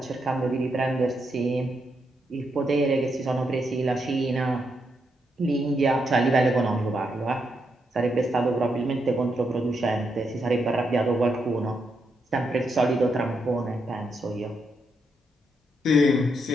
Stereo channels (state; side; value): normal; both; correlation 0.81